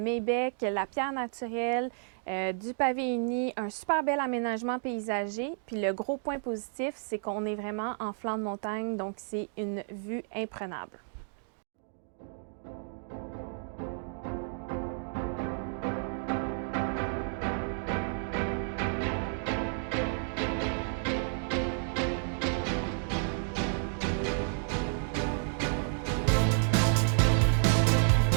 la pierre naturelle, du pavé uni, un super bel aménagement paysager. Puis le gros point positif, c'est qu'on est vraiment en flanc de montagne, donc c'est une vue imprenable.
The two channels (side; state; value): left; silent; digital silence